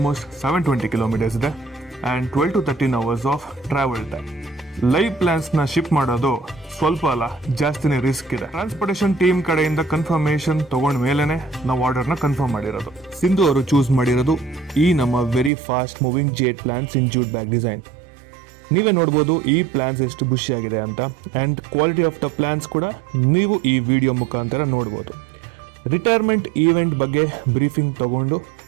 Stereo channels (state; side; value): drops out; left; at 15.5 s